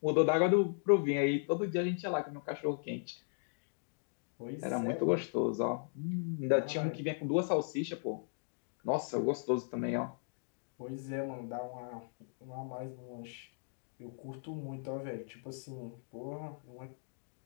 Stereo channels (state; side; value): silent; right; digital silence